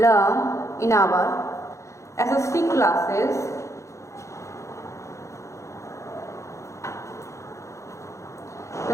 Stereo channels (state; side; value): late; right; 0.14 ms